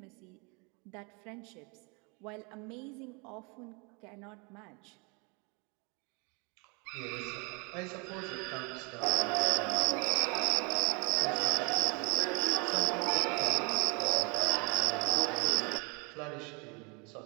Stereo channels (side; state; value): left; quieter; 31.6 dB